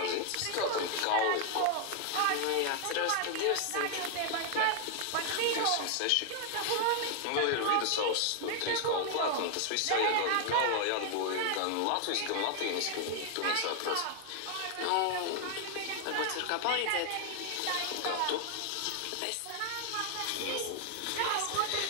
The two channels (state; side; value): different; both; correlation 0.00